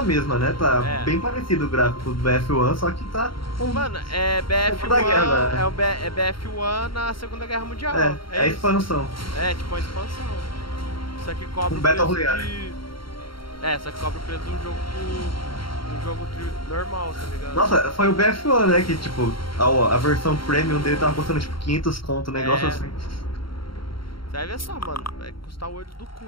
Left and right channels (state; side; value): late; right; 0.73 ms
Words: mesma, né? Tá bem parecido o gráfico do BF1, só que tá... Mano, é BF1, é BF1 na Segunda Guerra Mundial. É a expansão. É, tipo a expansão. Só que cobra o Battle Royale. Só que cobra o preço de um jogo normal, tá ligado? Nossa, foi o BF1, né? Que tipo, a versão premium dele tava custando tipo 500 conto, um negócio assim. Você vai ver só, mano. Vai custar o olho do cu